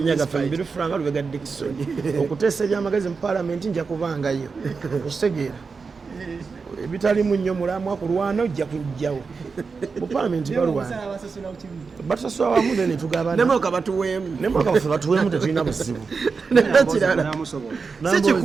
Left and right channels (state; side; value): quieter; left; 4.9 dB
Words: gaffe mubiri franga lubega Dickson okuteesa ebyamagezi mu palamenti nja kubangayo okitegeera ebitalimu nnyo mulamwa kulwana ojja kujjawo mu palamenti balwana batusasula wamu ne tugabana nemoka batuweemu nemoka baffe batuweemu tetulina buzibu nekirala si